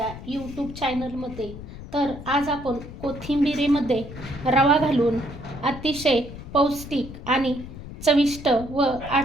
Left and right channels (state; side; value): noise; left; rumble, 12 dB below the sound